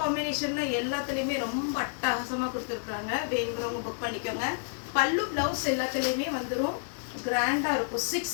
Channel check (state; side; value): silent; right; digital silence